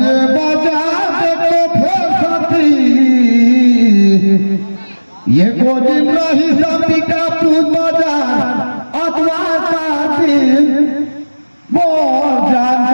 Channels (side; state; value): both; inverted; correlation -1.00